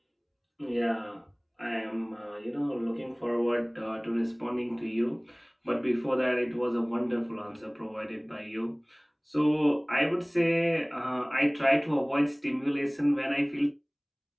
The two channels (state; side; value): identical; both; correlation 1.00